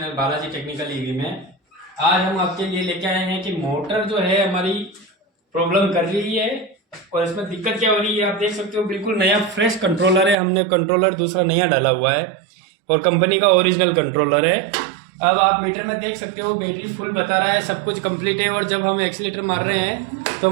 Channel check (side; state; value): left; drops out; at 10.4 s